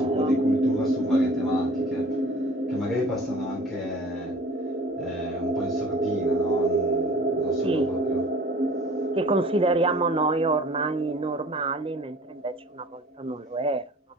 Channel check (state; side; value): normal; both; correlation 0.47